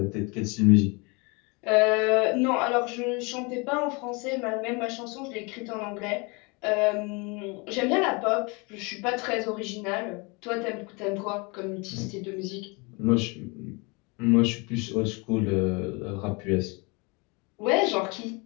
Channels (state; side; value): quieter; right; 29.3 dB